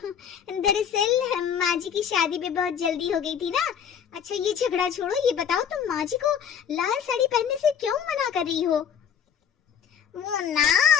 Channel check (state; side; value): quieter; right; 8.1 dB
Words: दरअसल माँ जी की शादी भी बहुत जल्दी हो गई थी ना। अच्छा ये झगड़ा छोड़ो, ये बताओ तुम माँ जी को लाल साड़ी पहनने से क्यों मना कर रही हो? वो ना,